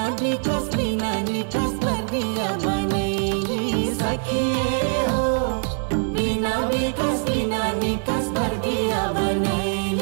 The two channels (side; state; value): left; silent; 62 dB below the other